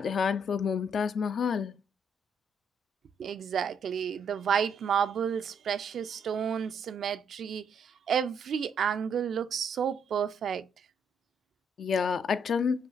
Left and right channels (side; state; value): both; normal; correlation 0.71